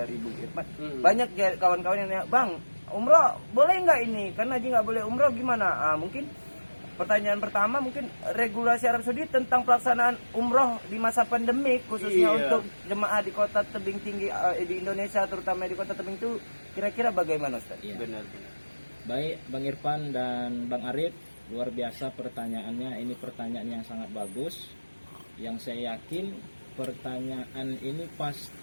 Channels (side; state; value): both; inverted; correlation -1.00